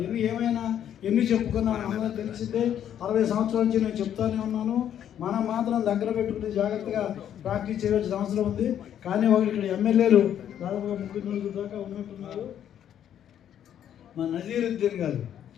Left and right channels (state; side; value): quieter; right; 10.0 dB